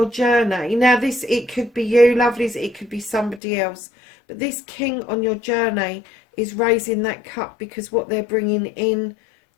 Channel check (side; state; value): right; drops out; at 3.4 s